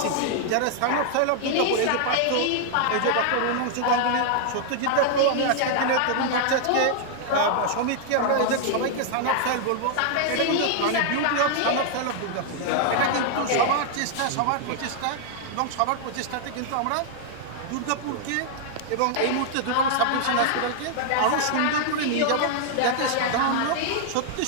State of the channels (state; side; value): different; both; correlation 0.00